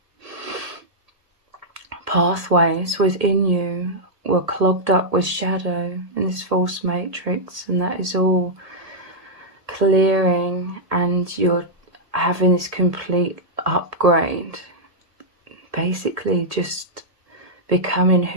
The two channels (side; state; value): left; late; 1.8 ms